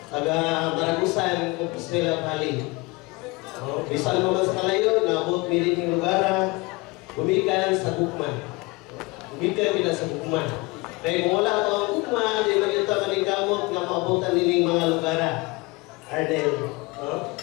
taga Maragusan, Compostela Valley. Bisan mo man sa kalayo, naabot miling lugar, gumikan sa Gugma. Gumikan kita sa Gugma. Kaya kung wala ito ang Gugma, di magkita maningkamot nga maabutan nining mga lugar. Arnel.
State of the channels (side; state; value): right; quieter; 24.9 dB